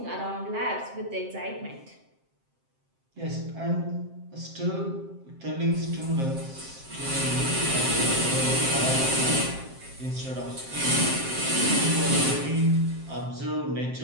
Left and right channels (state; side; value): late; left; 7.6 ms